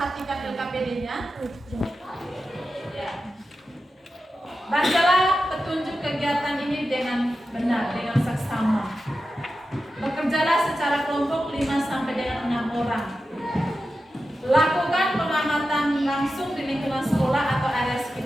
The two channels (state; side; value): normal; both; correlation 0.91